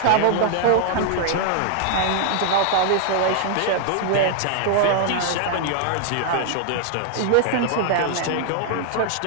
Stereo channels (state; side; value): different; both; correlation 0.00